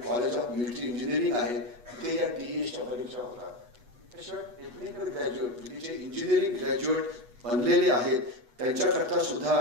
ऑफ मिलिटरी इंजिनिअरिंग आहे, तिथे या TSच्या परीक्षा होतात. त्याशिवाय टेक्निकल ग्रॅज्युएट म्हणजे जे इंजिनिअरिंग ग्रॅज्युएट बनलेले आहेत त्यांच्याकरता सुद्धा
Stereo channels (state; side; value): late; left; 8.2 ms